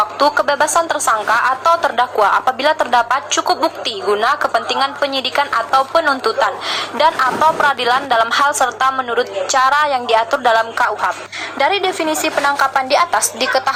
kebebasan tersangka atau terdakwa apabila terdapat cukup bukti guna kepentingan penyidikan atau penuntutan dan atau peradilan dalam hal serta menurut cara yang diatur dalam KUHP. Dari definisi penangkapan di atas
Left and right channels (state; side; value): identical; both; correlation 1.00